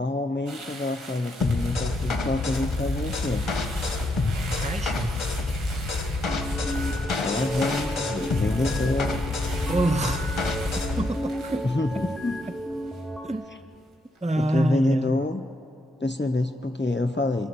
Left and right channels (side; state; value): both; normal; correlation 0.78